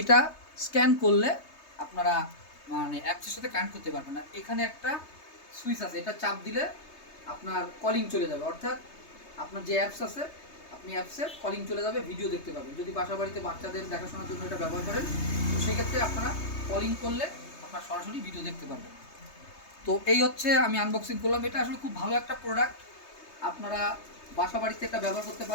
স্ক্যান করলে আপনারা মানে অ্যাপসের সাথে কানেক্ট করতে পারবেন। আর এখানে একটা সুইচ আছে, এটা চাপ দিলে আপনার কলিং চলে যাবে, অর্থাৎ আপনার যে অ্যাপস আছে আপনি অ্যাপসে কলিং চলে যাবে, ভিডিও দেখতে পাবেন। যদি বাসা বাড়িতে বাচ্চাদের দেখাশোনার জন্য এটা ব্যবহার করেন, তো সেক্ষেত্রে আপনারা কলিং করলে আপনার সরাসরি ভিডিও দেখতে পারবেন। তো এই হচ্ছে আমি আনবক্সিং করলাম। এটা আসলে খুব ভালো একটা প্রোডাক্ট, আপনারা বাসা বাড়িতে এটা ব্যবহার করতে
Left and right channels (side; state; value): right; late; 3.3 ms